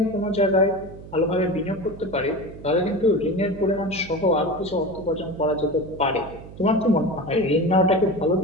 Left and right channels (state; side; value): noise; right; hum, 16 dB below the sound